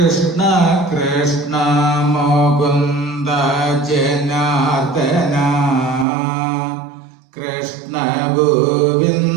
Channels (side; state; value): left; drops out; at 6.1 s